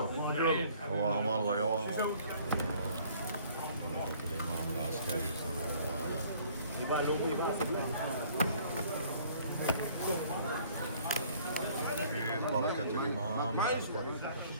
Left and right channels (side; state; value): both; inverted; correlation -0.56